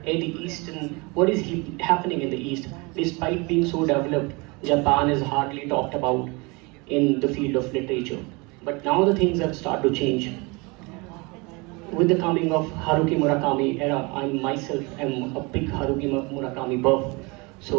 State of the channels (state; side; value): quieter; left; 27.3 dB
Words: the East and what is happening in the East. Despite being so developed, Japan is hardly talked about in the field of literature. But now the things have started to change. With the coming of Haruki Murakami era, I myself am a big Haruki Murakami buff.